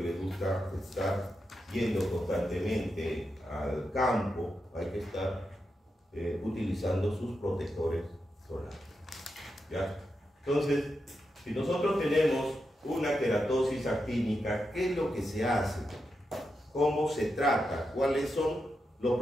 gusta estar yendo constantemente al campo, hay que estar utilizando sus protectores solares, ¿ya? Entonces, si nosotros tenemos una queratosis actínica, ¿qué es lo que se hace? ¿Cómo se trata? ¿Cuáles son los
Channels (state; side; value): normal; both; correlation 0.87